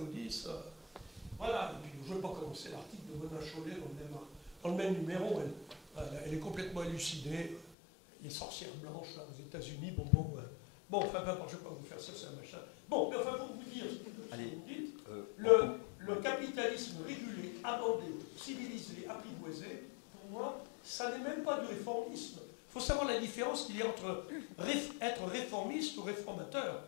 Voilà, et puis je ne vais pas commencer l'article de Mona Chollet dans le même numéro, elle est complètement élucidée, les sorcières blanches là, aux États-Unis, bon, enfin, je ne vais pas vous faire ça, c'est un machin. Bon, mais enfin, pour vous dire ce que vous dites, le capitalisme régulé, amendé, civilisé, apprivoisé, pour moi, ça n'est même pas du réformisme. Il faut savoir la différence qu'il y a entre être réformiste ou réformateur.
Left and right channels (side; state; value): right; drops out; at 7.7 s